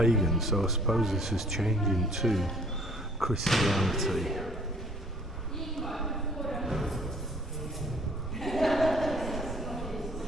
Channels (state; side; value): normal; both; correlation 0.56